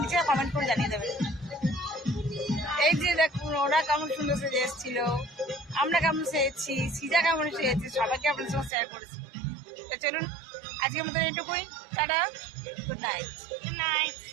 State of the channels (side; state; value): left; drops out; at 8.7 s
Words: নিচে কমেন্ট করে জানিয়ে দেবেন। এই যে দেখুন ওরা কেমন সুন্দর সেজে এসেছিল, আমরা কেমন সেজেছি, সিজা কেমন সেজেছি, সবাইকে আপনার সঙ্গে শেয়ার করেছি। তো চলুন আজকের মতন এটুকুই। Tata, good night. Good night,